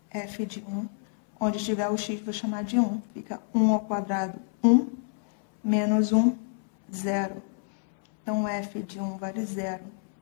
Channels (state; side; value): silent; right; 60 dB below the other